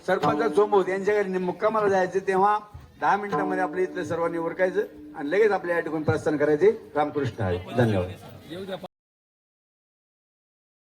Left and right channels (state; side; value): identical; both; correlation 1.00